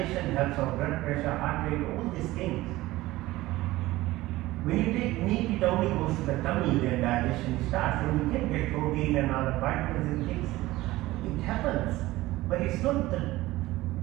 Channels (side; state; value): left; quieter; 17.9 dB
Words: helps our blood pressure, heart rate, all these things. When you take meat, it only goes to the tummy, then digestion starts. And you can get protein and other vitamins and things. It happens. But it's not